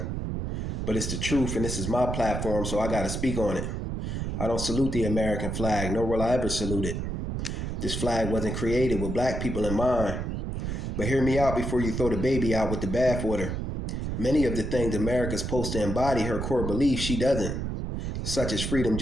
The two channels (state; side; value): noise; right; rumble, 3 dB below the sound